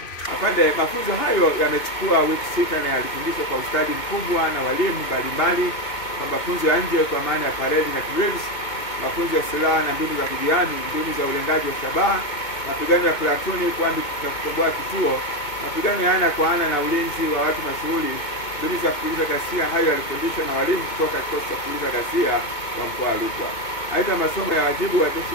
Afande, mafunzo hayo yamechukua wiki 6 na yalifundishwa kwa ustadi mkubwa na walimu mbalimbali kwa mafunzo ya nje kwa maana ya parade na drills, mafunzo ya silaha na mbinu za kujihami, mbinu za ulengaji wa shabaha, mapigano ya platuni na kukomboa kituo, mapigano ya ana kwa ana na ulinzi wa watu mashuhuri, mbinu za kupuliza ghasia. Hayo yalifundishwa na walimu kutoka kikosi cha kupuliza ghasia wa mkoa wa Rukwa. Aidha, masomo ya wajibu wa jeshi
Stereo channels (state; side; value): late; right; 2.2 ms